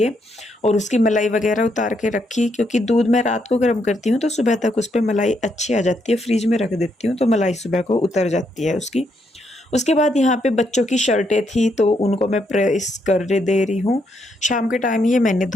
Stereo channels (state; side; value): normal; both; correlation 0.77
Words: और उसकी मलाई वगैरह उतार के रखी, क्योंकि दूध मैं रात को गर्म करती हूँ तो सुबह तक उस पर मलाई अच्छी आ जाती है। फ्रिज में रख देती हूँ तो मलाई सुबह को उतर जाती है उसकी। उसके बाद यहाँ पे बच्चों की शर्टें थी तो उनको मैं प्रेस कर दे रही हूँ। शाम के टाइम ये मैंने